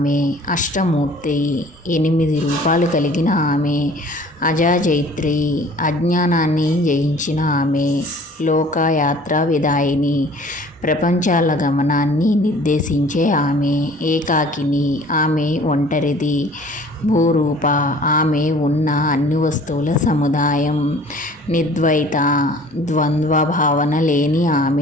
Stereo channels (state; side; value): normal; both; correlation 0.50